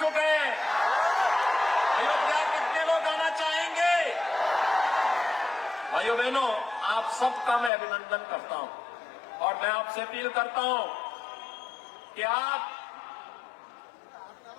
हैं? अयोध्या कितने लोग आना चाहेंगे? भाइयों बहनों, आप सबका मैं अभिनंदन करता हूं और मैं आपसे अपील करता हूं कि आप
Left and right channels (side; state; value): right; drops out; at 7.7 s